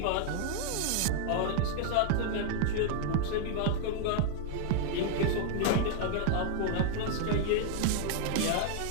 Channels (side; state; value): both; different; correlation 0.00